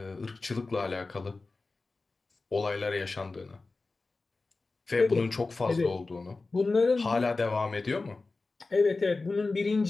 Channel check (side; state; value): right; quieter; 3.6 dB